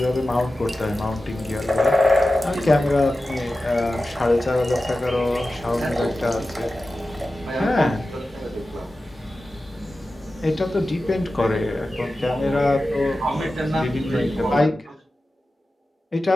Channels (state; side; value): normal; both; correlation 0.94